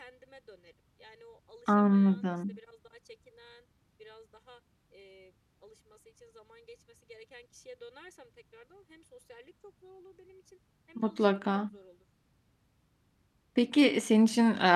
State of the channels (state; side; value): identical; both; correlation 1.00